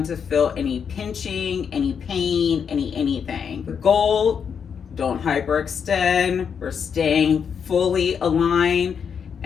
to feel any pinching, any pain, anything. The goal, don't hyperextend. We're staying fully aligned.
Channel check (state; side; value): quieter; right; 7.0 dB